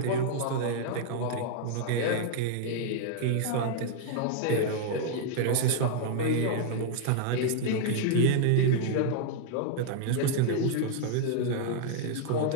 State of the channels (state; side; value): different; both; correlation 0.00